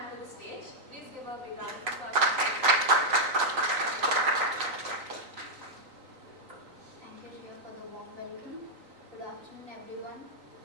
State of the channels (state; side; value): late; left; 3.9 ms